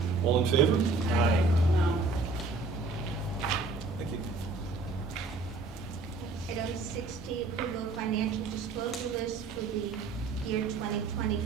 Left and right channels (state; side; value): quieter; left; 3.7 dB